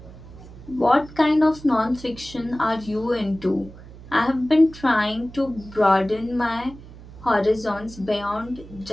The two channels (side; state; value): right; noise; hum, 18 dB below the sound